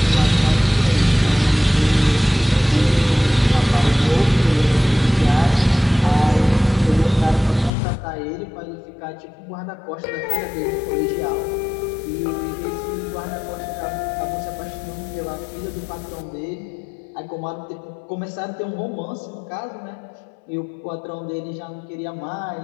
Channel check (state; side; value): drops out; right; at 7.7 s